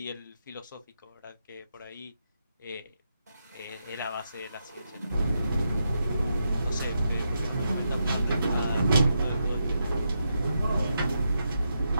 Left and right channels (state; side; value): inverted; both; correlation -0.84